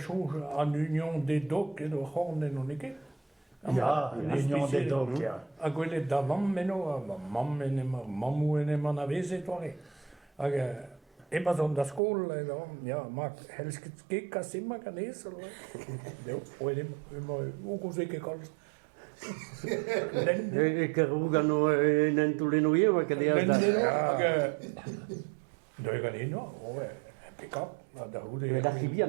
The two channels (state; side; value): drops out; left; at 12.0 s